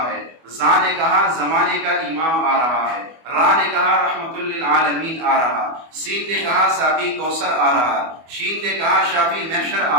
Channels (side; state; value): left; late; 24 ms